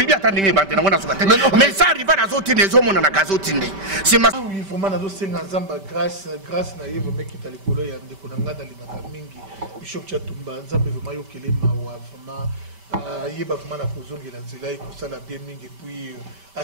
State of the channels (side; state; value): left; late; 5.1 ms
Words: bien attendez bande na sukate. Mais ça rival na zoti les hommes na gazotinde. C'est ma oui vraiment na zo senga nzamba grâce na yevo meki talikolo ya ndeko na ngada limaka mingi. Bishop Tchatumba nzambe vraiment yokele mawa vraiment yeba vraiment na kozongela nzela ekosala bien mingi puis à